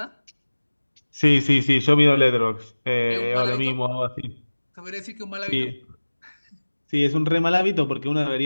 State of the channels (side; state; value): both; inverted; correlation -1.00